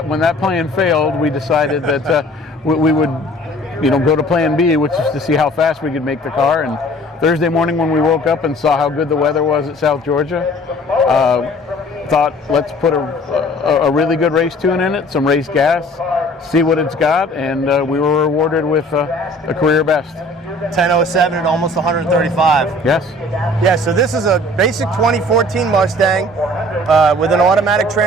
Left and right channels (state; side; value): normal; both; correlation 0.51